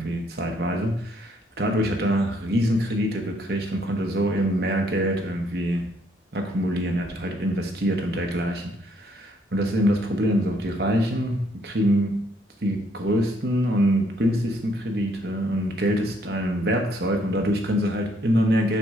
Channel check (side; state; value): both; normal; correlation 0.69